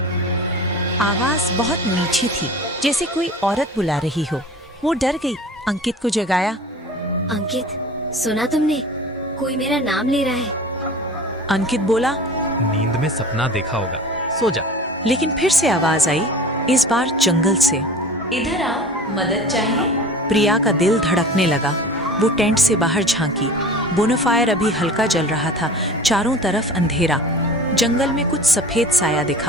आवाज बहुत नीची थी, जैसे कोई औरत बुला रही हो। वो डर गई, अंकित को जगाया। अंकित, सुना तुमने? कोई मेरा नाम ले रहा है। अंकित बोला, नींद में सपना देखा होगा, सो जा। लेकिन फिर से आवाज आई, इस बार जंगल से। इधर आओ, मदद चाहिए? प्रिया का दिल धड़कने लगा। वो टेंट से बाहर झांकी। बोनफायर अभी हल्का जल रहा था, चारों तरफ अंधेरा। जंगल में कुछ सफेद साया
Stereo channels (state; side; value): normal; both; correlation 0.40